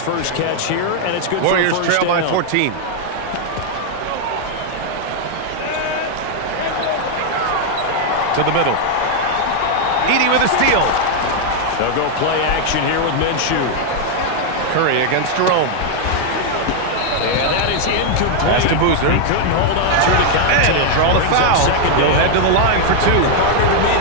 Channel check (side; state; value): both; different; correlation 0.00